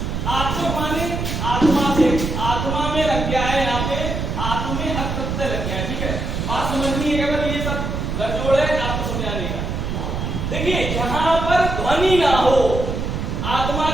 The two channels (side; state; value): right; noise; rumble, 3 dB below the sound